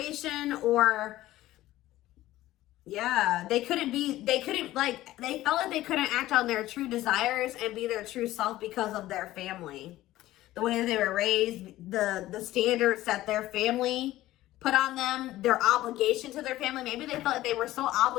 or yeah, they felt like they couldn't act on their true desires and be their true self because of their family. The way that they were raised, the standards that their family put on them, their obligation to their family. Maybe they felt like they were so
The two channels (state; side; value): quieter; right; 15.7 dB